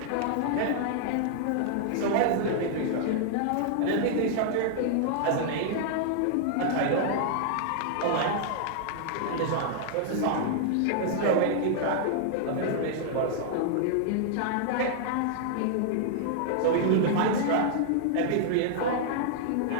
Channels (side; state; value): both; different; correlation -0.01